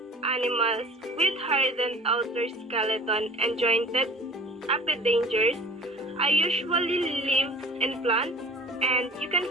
animals with hardened outer skeleton and jointed appendagers. I usually live in plants and you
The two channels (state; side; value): normal; both; correlation 0.44